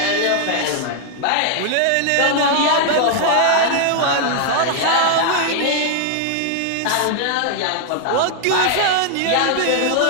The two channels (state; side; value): different; both; correlation 0.00